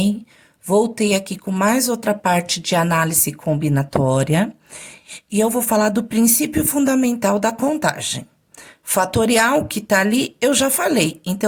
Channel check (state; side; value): identical; both; correlation 1.00